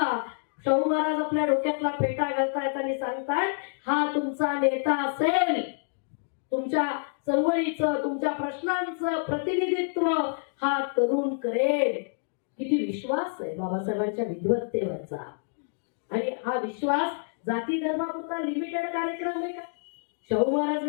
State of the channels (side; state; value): right; silent; digital silence